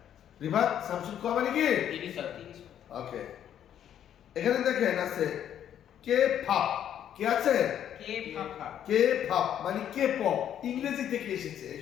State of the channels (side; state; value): right; quieter; 10.1 dB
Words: রিভাত সামশিব খোয়া মানে কি? 30 অধ্যায়। ওকে। এখানে দেখেন আছে কে ফাপ। কি আছে? কে ফাফা। কে ফাপ মানে কে পপ। ইংরেজি থেকে এসেছে। এই